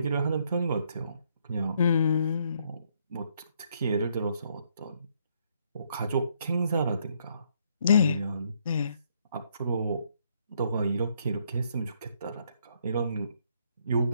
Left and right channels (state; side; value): inverted; both; correlation -0.70